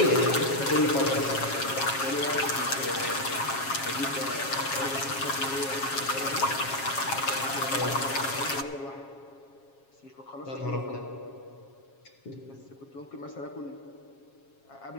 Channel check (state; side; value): late; right; 7.3 ms